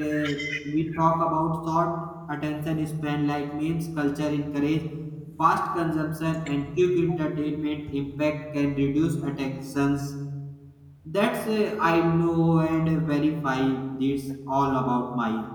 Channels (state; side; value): identical; both; correlation 1.00